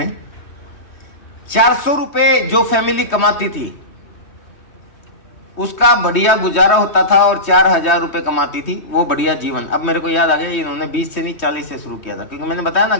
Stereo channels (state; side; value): late; right; 3.2 ms